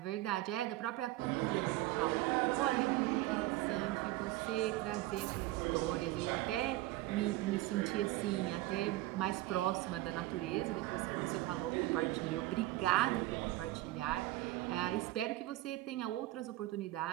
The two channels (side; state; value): left; quieter; 17.2 dB